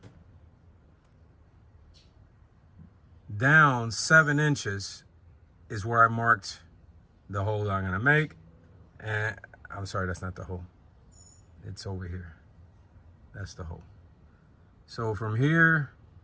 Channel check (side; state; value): both; identical; correlation 1.00